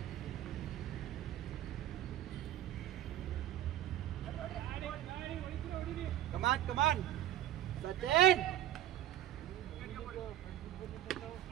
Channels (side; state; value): left; quieter; 12.6 dB